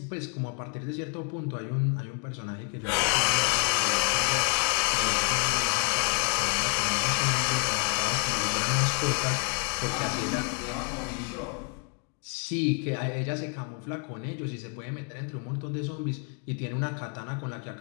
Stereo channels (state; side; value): quieter; right; 36.9 dB